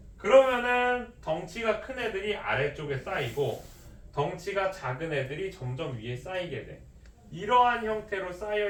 그러면은 덩치가 큰 애들이 아래쪽에 쌓이고 덩치가 작은 애들이 점점 위에 쌓이게 돼. 이러한 형태로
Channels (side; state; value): both; identical; correlation 1.00